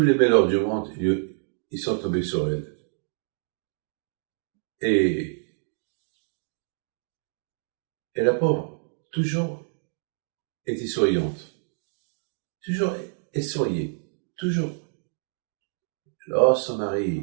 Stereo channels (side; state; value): left; silent; digital silence